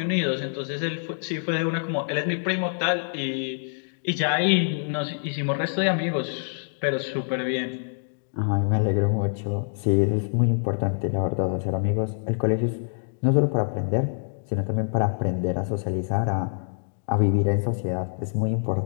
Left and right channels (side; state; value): right; silent; digital silence